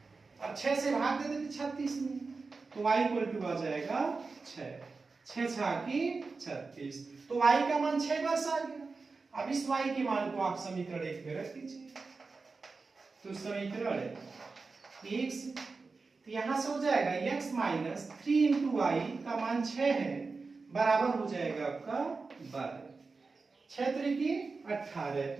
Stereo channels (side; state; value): left; quieter; 4.2 dB